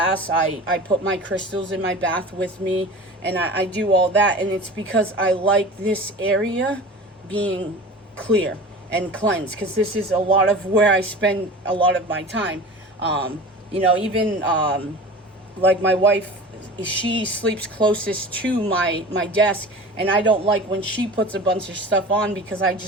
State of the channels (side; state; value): both; normal; correlation 0.37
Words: I put my crystals in my bath with me, and I do all that. And it's because I like this area being clear and cleansed, because this is a lot of where I spend a lot of my time. You know, even like my wife, she sleeps closest to my desk, and I don't like when she puts a bunch of stuff on, because I